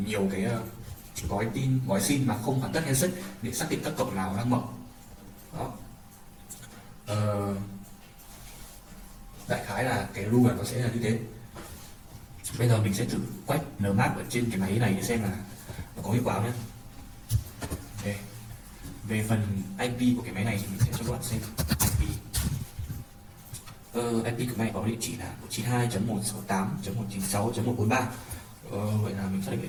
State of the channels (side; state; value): both; identical; correlation 1.00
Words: nhiều cái gói tin, gói SYN mà không hoàn tất handshake để xác định các cổng nào đang mở. Đó. Đại khái là cái rule nó sẽ là như thế. Bây giờ mình sẽ thử quét Nmap ở trên cái máy này để xem là nó có hiệu quả nhé. Okay. Về phần IP của cái máy này thì mình sẽ cho các bạn xem IP. IP của máy có địa chỉ là 192.168.196.143. Vậy là mình xác định địa